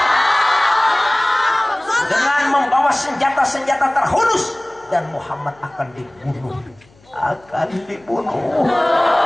Dengan membawa senjata-senjata terhunus, dan Muhammad akan dibunuh. Katakan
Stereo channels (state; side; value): noise; left; hum, 30 dB below the sound